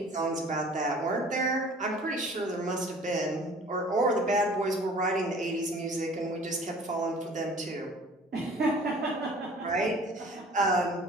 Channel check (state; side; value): normal; both; correlation 0.48